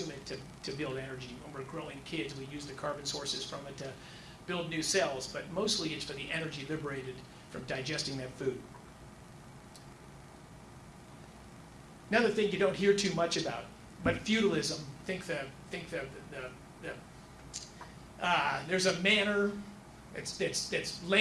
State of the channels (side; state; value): both; identical; correlation 1.00